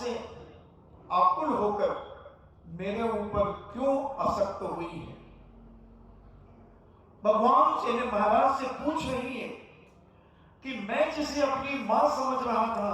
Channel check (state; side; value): identical; both; correlation 1.00